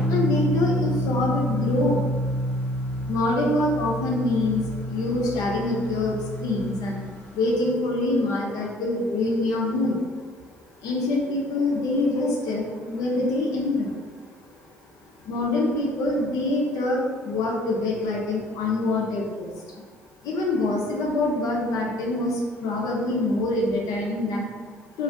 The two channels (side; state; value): both; normal; correlation 0.54